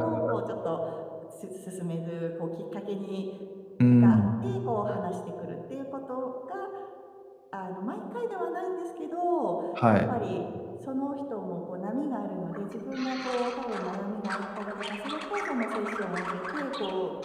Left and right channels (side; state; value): both; identical; correlation 1.00